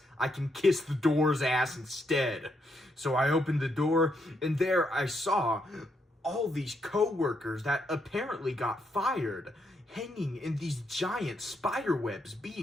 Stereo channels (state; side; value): normal; both; correlation 0.78